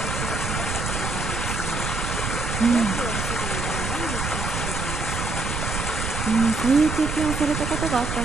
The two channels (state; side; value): noise; right; rumble, 3 dB below the sound